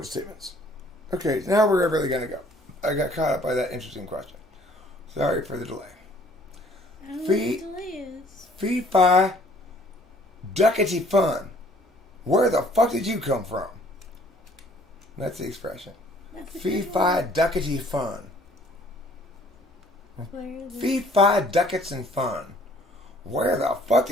statements. Okay, now where are we really going to go? I got caught up by that interesting question. Sorry for the delay. I don't know what the delay is. Fee, fi, duckety fun. Where the fuck did you come from? That's the expression. Fee, fi, duckety fun. Fee, fi, ducats and fun. Where the fuck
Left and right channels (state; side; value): normal; both; correlation 0.58